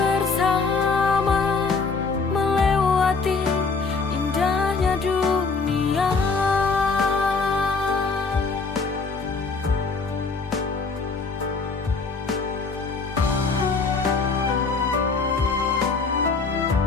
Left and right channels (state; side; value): quieter; right; 4.4 dB